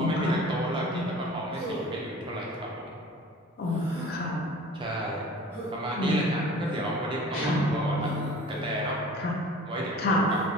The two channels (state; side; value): normal; both; correlation 0.44